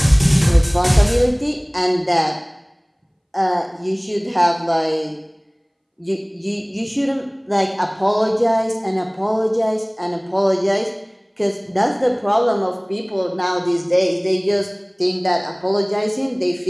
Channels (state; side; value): identical; both; correlation 1.00